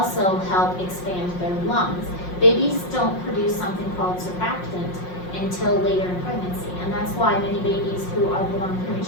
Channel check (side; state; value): right; late; 5.5 ms